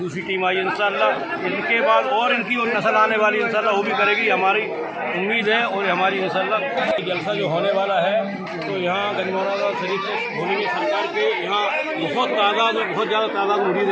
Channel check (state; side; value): identical; both; correlation 1.00